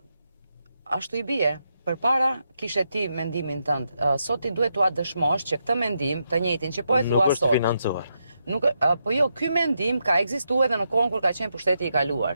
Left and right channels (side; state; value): both; inverted; correlation -0.83